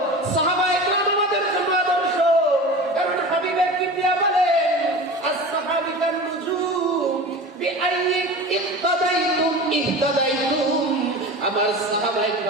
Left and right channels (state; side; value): normal; both; correlation 0.33